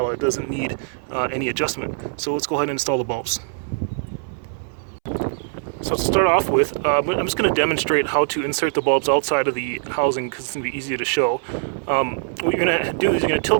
It doesn't need any adjustment. So let's go ahead and install the bulbs. So to start off with, I'm just going to demonstrate how to insert the bulbs outside of the housing because it's going to be easier to show. What you're going to do is you're going to tilt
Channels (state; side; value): silent; left; 64 dB below the other